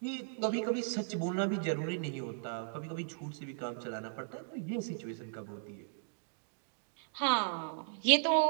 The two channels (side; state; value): left; silent; digital silence